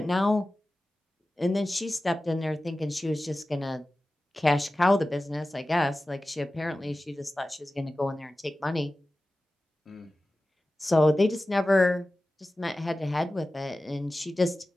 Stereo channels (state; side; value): normal; both; correlation 0.95